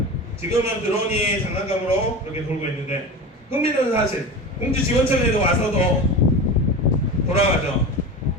지금은 드론이 장난감으로 그렇게 돌고 있는데 흥미로운 사실 공주 지원청에도 와서도 돌아가죠.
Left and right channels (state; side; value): normal; both; correlation 0.28